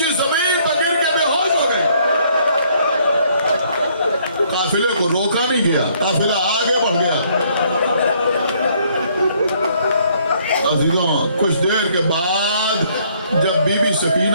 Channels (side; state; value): both; inverted; correlation -0.65